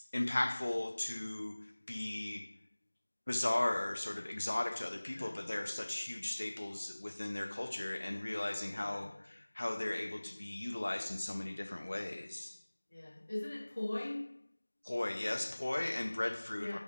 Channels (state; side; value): inverted; both; correlation -1.00